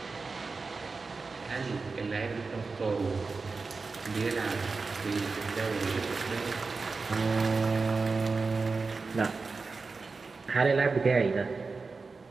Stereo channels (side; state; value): left; quieter; 4.2 dB